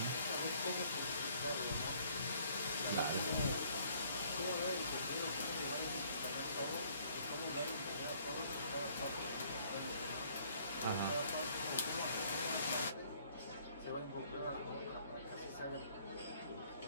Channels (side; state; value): both; inverted; correlation -0.61